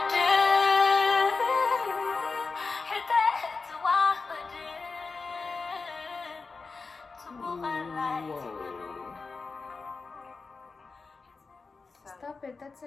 Stop it, that's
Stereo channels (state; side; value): quieter; right; 4.3 dB